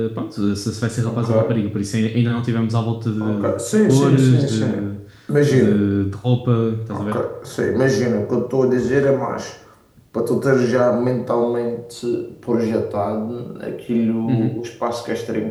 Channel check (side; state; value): both; identical; correlation 1.00